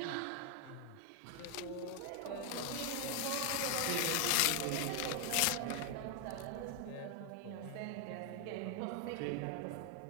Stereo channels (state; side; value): different; both; correlation 0.00